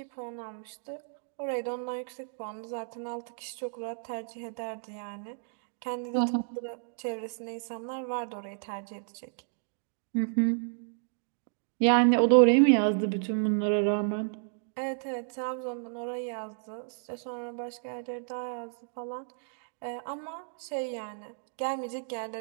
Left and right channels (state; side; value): silent; left; digital silence